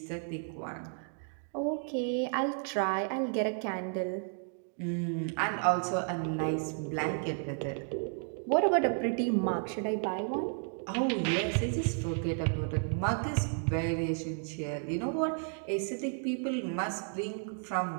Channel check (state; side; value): silent; left; 56 dB below the other